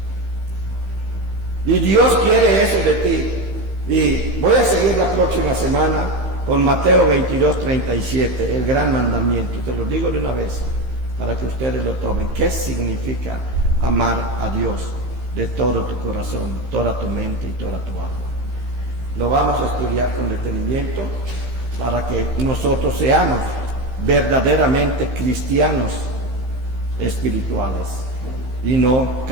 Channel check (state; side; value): late; left; 15 ms